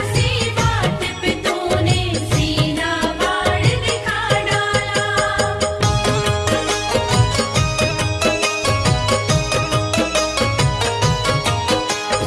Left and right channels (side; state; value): both; identical; correlation 1.00